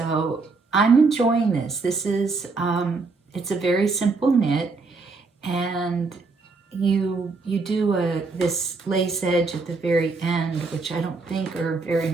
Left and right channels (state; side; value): quieter; left; 4.1 dB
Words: I'm enjoying this. This is, it's a very simple knit, and you do this lace edge at the very end, which I don't think are very